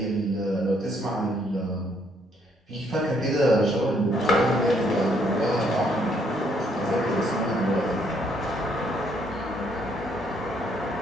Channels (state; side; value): normal; both; correlation 0.69